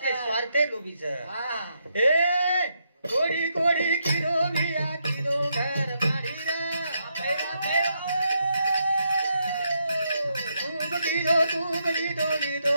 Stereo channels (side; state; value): both; inverted; correlation -0.79